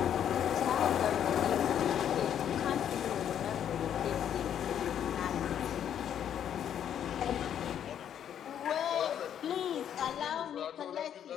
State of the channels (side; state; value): right; quieter; 9.5 dB